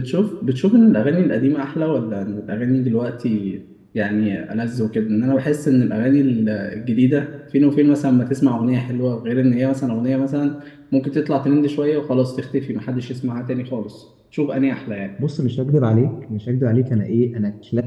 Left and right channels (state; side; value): identical; both; correlation 1.00